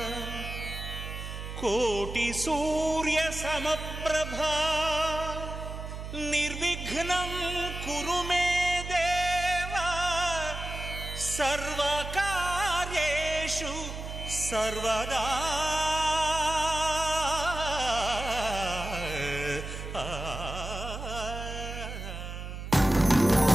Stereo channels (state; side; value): noise; right; hum, 8 dB below the sound